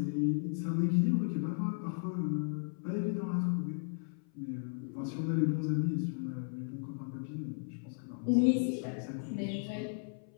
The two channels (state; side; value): silent; right; 54 dB below the other